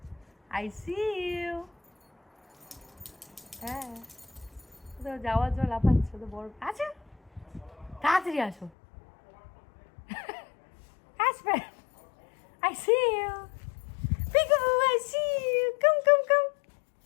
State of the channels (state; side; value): drops out; right; at 8.7 s